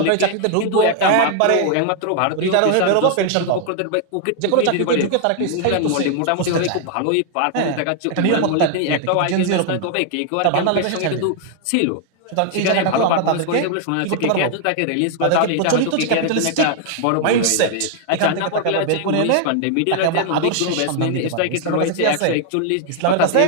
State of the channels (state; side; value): different; both; correlation 0.00